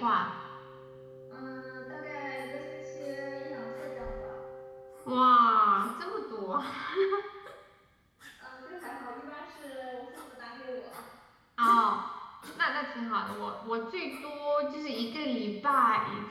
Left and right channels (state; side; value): identical; both; correlation 1.00